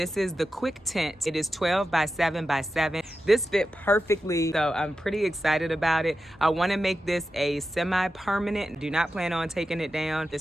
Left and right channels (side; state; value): both; normal; correlation 0.91